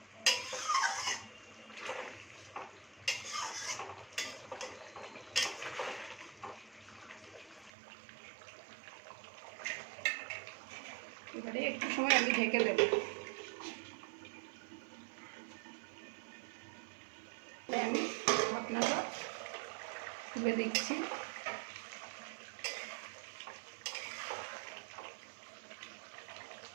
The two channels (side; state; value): left; drops out; at 7.7 s